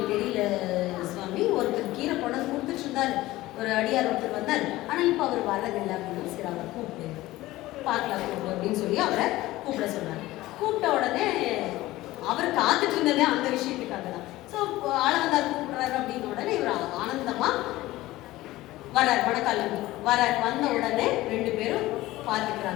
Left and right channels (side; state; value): right; quieter; 17.4 dB